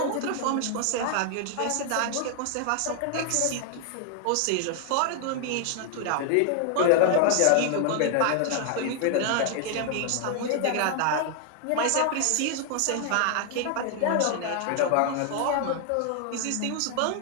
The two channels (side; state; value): both; different; correlation 0.00